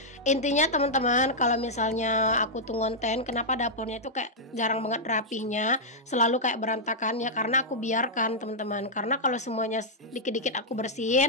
Intinya teman-teman, kalau misalnya aku tuh ngonten kenapa dapurnya itu kayak jarang banget rapihnya, selalu kayak berantakan ya, karena aku biarkan teman-teman. Karena kalau semuanya dikit-dikit aku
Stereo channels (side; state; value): both; normal; correlation -0.07